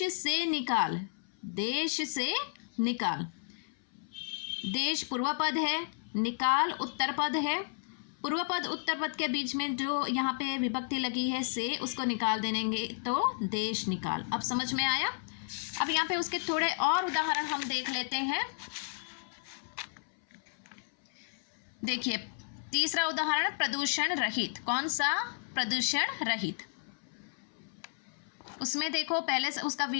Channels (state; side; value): silent; right; 56 dB below the other